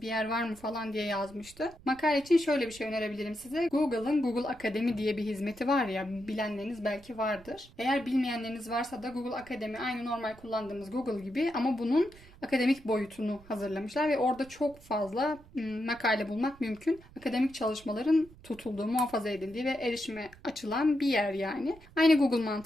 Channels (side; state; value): right; noise; rumble, 22 dB below the sound